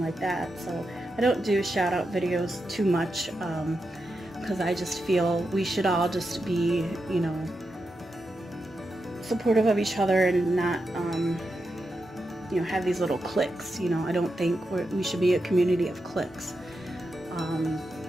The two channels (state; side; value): normal; both; correlation 0.87